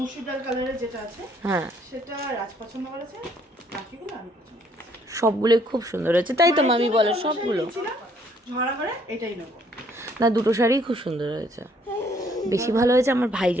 ডাল কালারের যেটা আছে হ্যাঁ, সেটা রাজ পছন্দ করেছে, বাকিগুলো আমি পছন্দ করেছি। সবগুলোই খুব সুন্দর হয়েছে, তাই তো মামি বলে সবগুলো। ঝরা করে এটাই নেবো। না, দুটো শাড়িই খুব সুন্দর হয়েছে। বেশি ভালো হয়েছে আমার ভাই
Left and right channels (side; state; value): both; normal; correlation 0.65